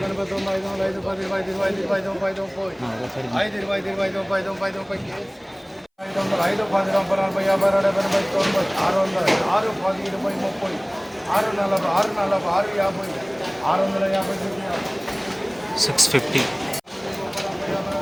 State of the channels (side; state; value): both; identical; correlation 1.00